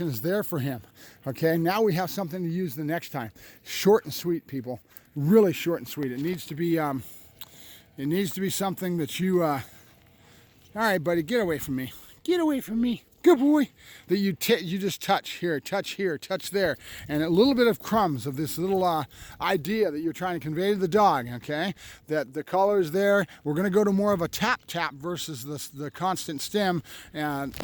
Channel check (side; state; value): both; identical; correlation 1.00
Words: is there for him, okay? Now we have something to use the next time. Short and sweet, people. Really short and sweet. It needs to be something that you, all right, buddy, get away from me. Get away from me. Good boy. That you just touch here, touch there, and a little bit of crumbs of this little idea that you're trying to convey to the dog, okay? That the collar is there. We're going to go to more of a tap versus the constant stim, and